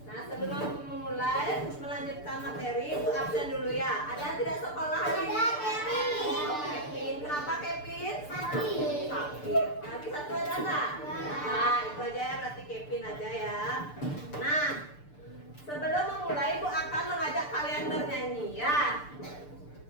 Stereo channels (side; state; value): right; late; 6.8 ms